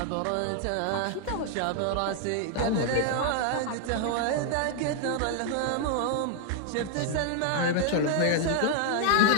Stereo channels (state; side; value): different; both; correlation 0.00